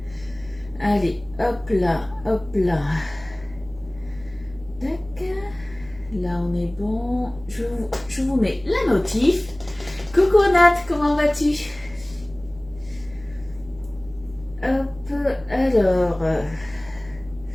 allez, hop là, tac, là on est bon, je vous mets la notif. Coucou Nat, comment vas-tu? Hop, alors,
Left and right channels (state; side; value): noise; right; hum, 21 dB below the sound